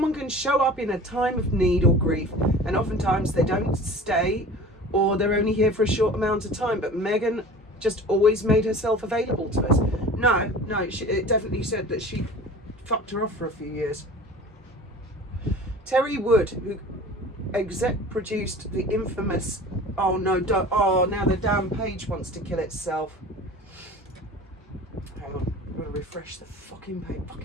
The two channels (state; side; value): normal; both; correlation 0.40